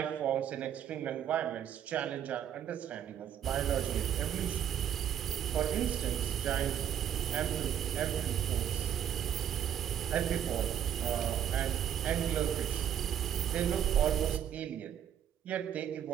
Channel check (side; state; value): left; quieter; 9.6 dB